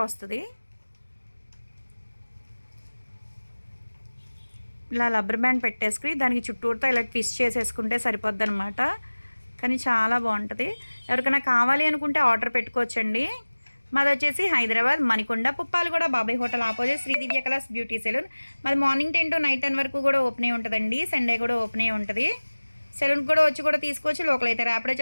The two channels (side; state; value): both; inverted; correlation -1.00